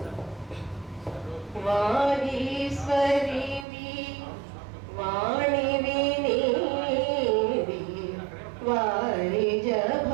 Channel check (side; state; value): left; drops out; at 3.7 s